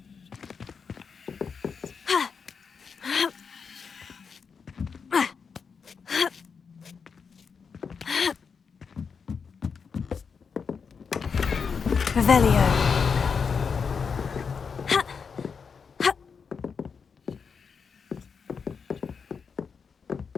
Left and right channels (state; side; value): quieter; right; 5.9 dB